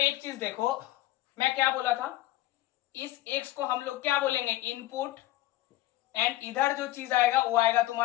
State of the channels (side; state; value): right; quieter; 16.4 dB